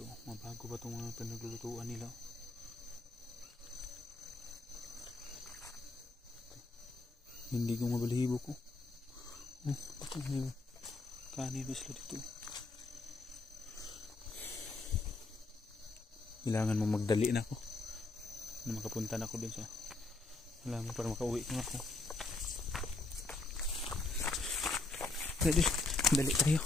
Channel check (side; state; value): right; quieter; 3.4 dB